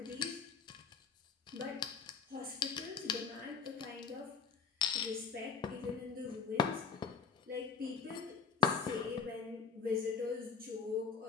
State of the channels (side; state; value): right; quieter; 5.9 dB